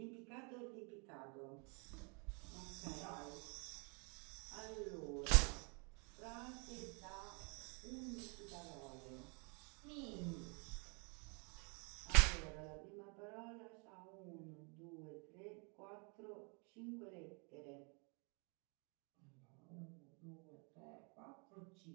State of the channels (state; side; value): quieter; left; 34.5 dB